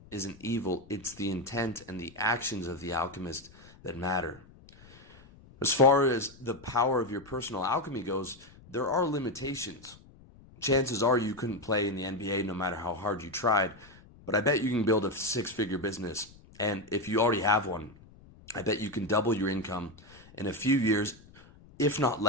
isn't evil, it's the intent and the actions of the alchemist that matter. As far as the power of your personal alchemy goes, there are limitations. Chances are you couldn't play in the NBA no matter how hard you tried, but I bet you can build a 6-figure business. And if you already have one, I bet you can double your income in a few years, if not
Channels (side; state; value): left; noise; rumble, 23 dB below the sound